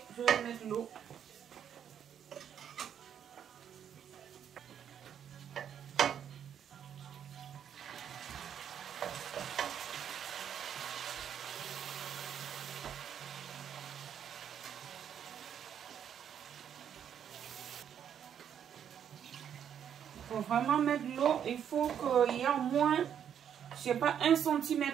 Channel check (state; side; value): quieter; left; 8.8 dB